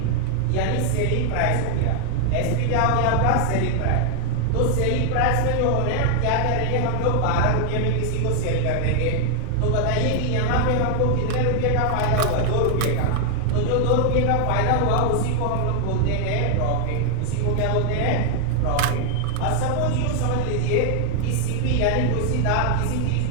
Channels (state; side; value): different; both; correlation 0.00